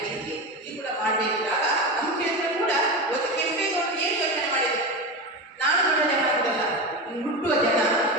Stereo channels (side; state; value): both; normal; correlation 0.21